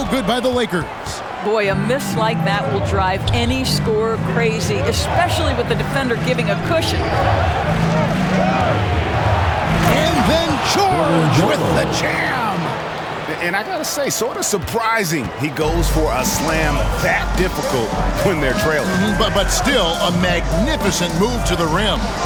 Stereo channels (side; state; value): both; identical; correlation 1.00